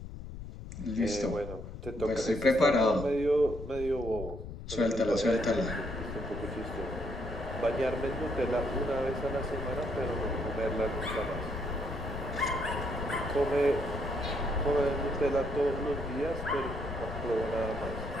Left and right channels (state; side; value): noise; left; rumble, 10 dB below the sound